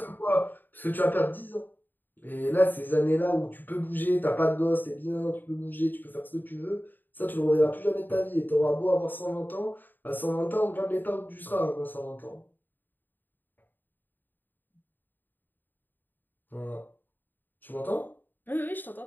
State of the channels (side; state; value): right; late; 0.091 ms